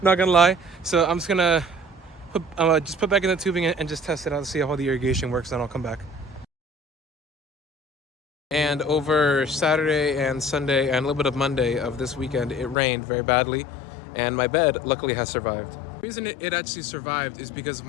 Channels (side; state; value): right; drops out; at 12.8 s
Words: not gonna lie. So I'm just gonna put back in the tubing and just test it out to see how the irrigation works, then I'll come back. And over Saturday and Sunday and a little bit of Monday of this weekend, it rained very badly, and my bed luckily has survived. The reason it actually survived is because of